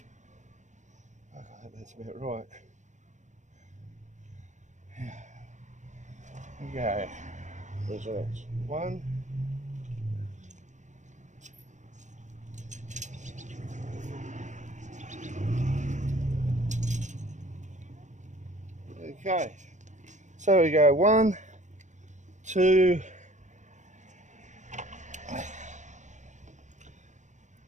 I think that's about right. Okay. Measurements. 1. Okay. So we go 1, 2,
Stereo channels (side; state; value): left; late; 0.35 ms